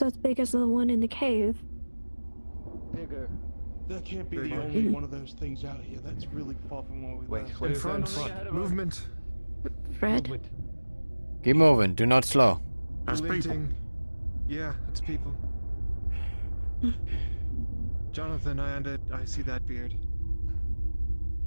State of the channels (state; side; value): inverted; both; correlation -1.00